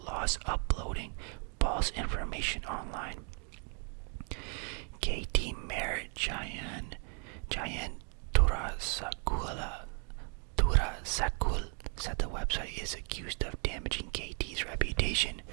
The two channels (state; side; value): quieter; left; 36.5 dB